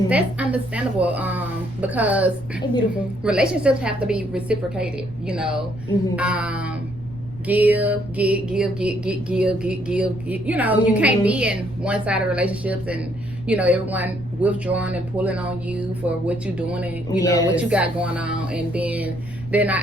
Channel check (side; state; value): left; noise; rumble, 16 dB below the sound